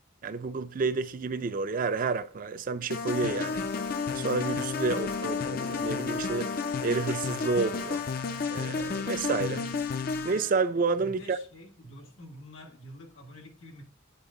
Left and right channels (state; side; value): normal; both; correlation 0.17